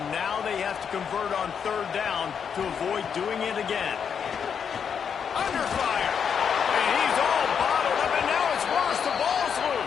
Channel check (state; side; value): quieter; right; 7.2 dB